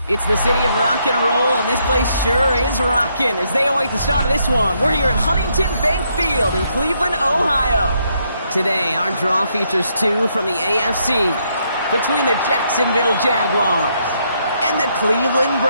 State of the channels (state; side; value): inverted; both; correlation -0.75